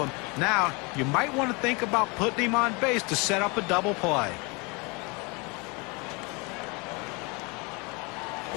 Now, you might want to think about putting him on base to set up a double play.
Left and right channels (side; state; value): right; quieter; 29.2 dB